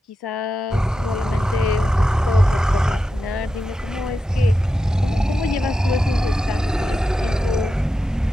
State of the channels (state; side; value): normal; both; correlation 0.90